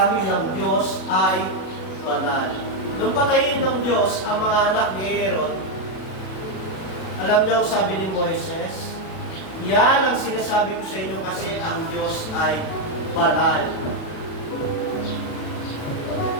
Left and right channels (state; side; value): late; right; 37 ms